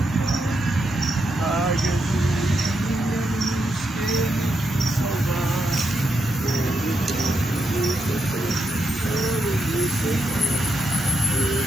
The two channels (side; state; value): both; normal; correlation 0.83